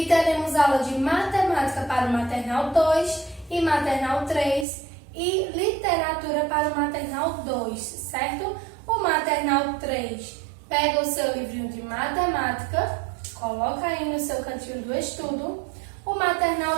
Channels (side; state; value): left; drops out; at 4.7 s